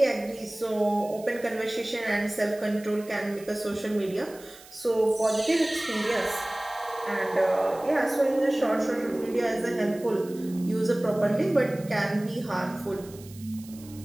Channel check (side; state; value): right; noise; hiss, 21 dB below the sound